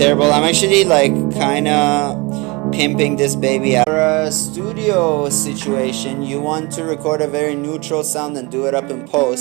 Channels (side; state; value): left; quieter; 26.4 dB